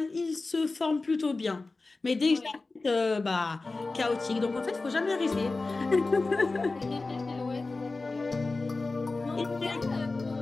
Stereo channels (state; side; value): quieter; right; 3.5 dB